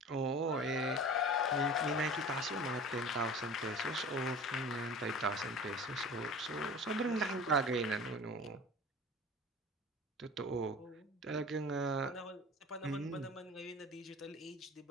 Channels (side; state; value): both; normal; correlation 0.39